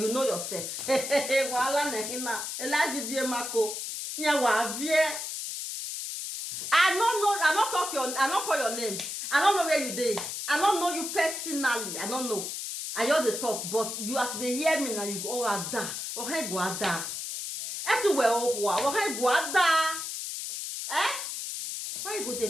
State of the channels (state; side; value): noise; left; hiss, 5 dB below the sound